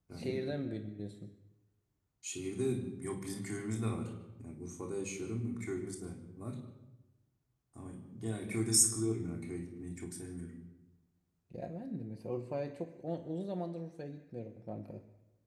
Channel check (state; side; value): identical; both; correlation 1.00